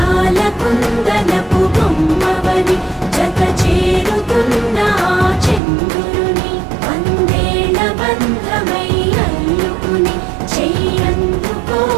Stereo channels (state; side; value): drops out; left; at 5.6 s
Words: కుందనపు బొమ్మవని జత చేరుతున్న చంద్రుని, వందేళ్ల బంధమై అల్లుకుని